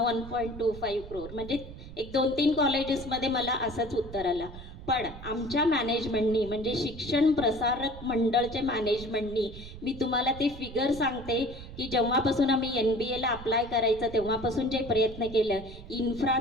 1.25 करोड, म्हणजे 1-2-3 कॉलेजेसमध्ये मला असंच उत्तर आलं. पण आमच्या मॅनेजमेंटनी म्हणजे शिक्षण प्रसारक मंडळच्या मॅनेजमेंटनी मी तुम्हाला ते फिगर सांगते की जेव्हापासून आम्ही MBAला अप्लाय करायचं तेव्हापासून जे प्रयत्न केलं,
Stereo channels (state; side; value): noise; right; rumble, 13 dB below the sound